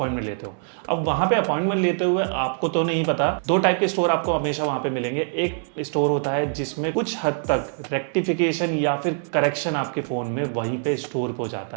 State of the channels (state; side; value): silent; left; digital silence